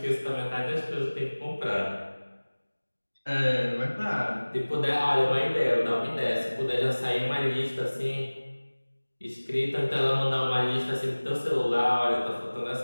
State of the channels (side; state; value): both; inverted; correlation -1.00